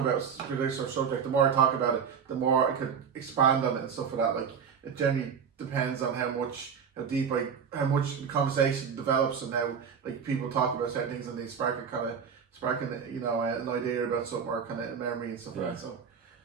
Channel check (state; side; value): quieter; left; 6.9 dB